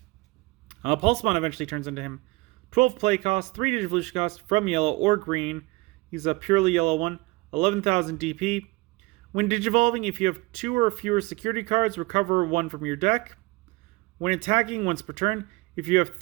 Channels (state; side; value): quieter; left; 23.1 dB